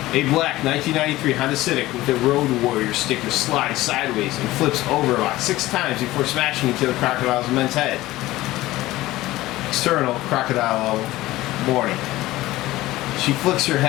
A black 1993 Honda Civic with a Road Warrior sticker slides sideways and flips over about 6 times before smashing into the crocodile's immense head. External crocodile warning. She flicks her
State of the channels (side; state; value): right; quieter; 17.2 dB